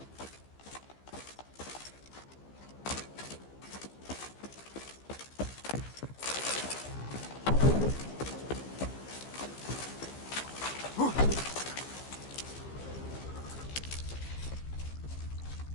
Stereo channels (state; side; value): late; right; 15 ms